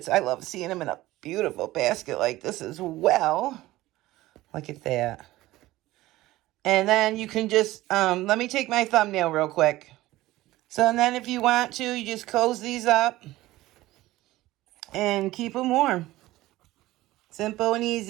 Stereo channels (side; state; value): left; quieter; 17.2 dB